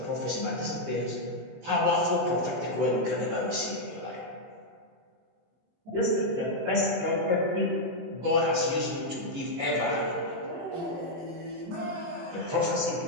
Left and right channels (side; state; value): left; late; 23 ms